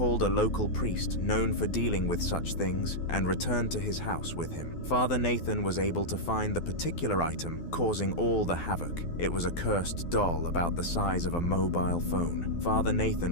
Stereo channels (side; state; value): right; late; 12 ms